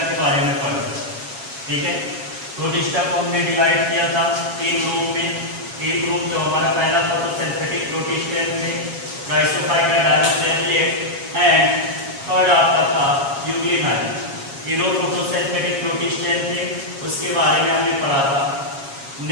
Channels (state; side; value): late; left; 7.3 ms